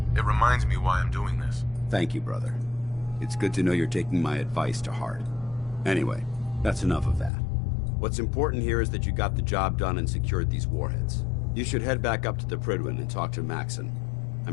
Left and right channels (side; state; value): right; drops out; at 7.3 s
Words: It reminds me why I'm doing this. Thank you, brother. It's good to know you're taking my advice to heart. Anyway, that's enough of that. What's important here is that you got the job done and secured these warheads. You should head back up to the Prydwen and talk to Maxon.